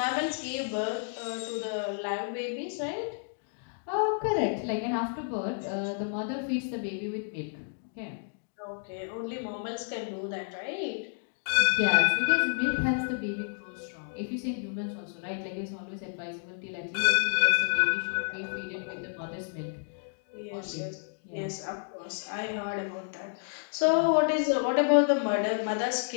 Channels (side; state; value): right; silent; digital silence